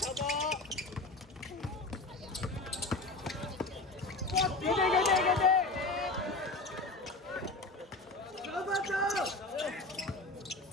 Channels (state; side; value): quieter; right; 3.1 dB